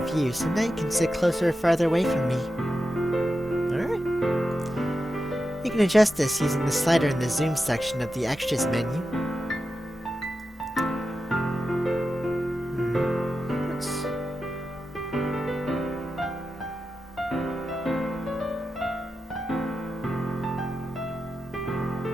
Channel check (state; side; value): normal; both; correlation 0.90